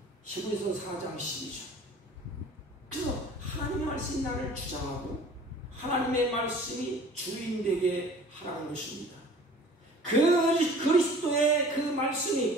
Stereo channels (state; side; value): normal; both; correlation 0.47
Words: 히브리서 4장 12절. 그래서 하나님의 말씀이 나를 주장하고 하나님의 말씀이 주인되게 하라는 것입니다. 그리스도의 그